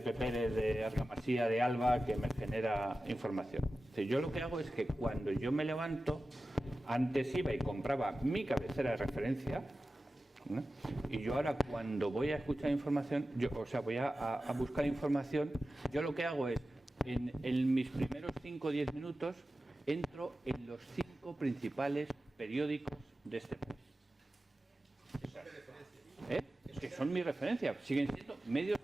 Pérez de Argamasía de Alba que me genera información. O sea, yo lo que hago es que cuando yo me levanto, antes iba y compraba mi cabecera de referencia, ¿no? Y yo ahora cuando voy a escuchar información, voy a buscar información, yo lo que hago es, en mis primeros 5 o 10 minutos, entro en los 5 principales periódicos de este país. Que son mi referencia, siguen siendo medios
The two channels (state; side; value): normal; both; correlation 0.94